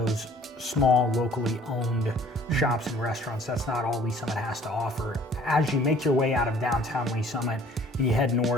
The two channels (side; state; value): both; normal; correlation 0.55